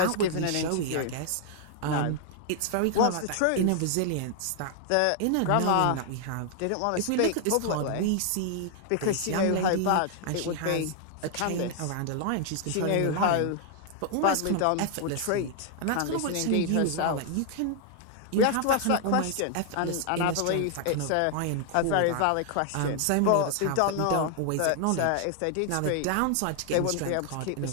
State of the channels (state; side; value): different; both; correlation 0.00